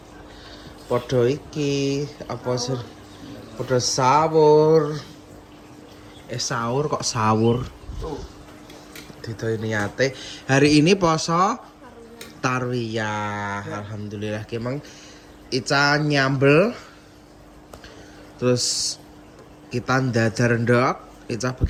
Podo iki apa sih? Podo sahur. Sahur kok sahur. Dito niate. Hari ini poso tarwiyah. Alhamdulillah emang Ica nyambel, terus kita ndadar ndok, Ica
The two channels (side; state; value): both; identical; correlation 1.00